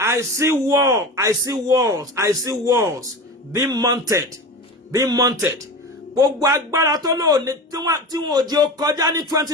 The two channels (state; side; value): normal; both; correlation 0.29